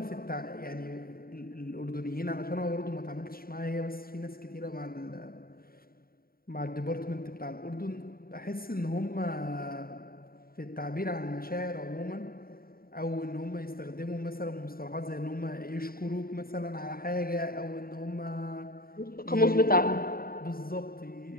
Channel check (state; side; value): late; right; 0.43 ms